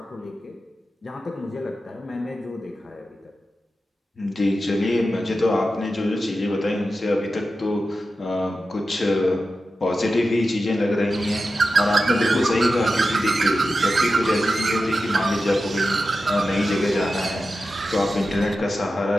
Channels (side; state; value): both; normal; correlation 0.91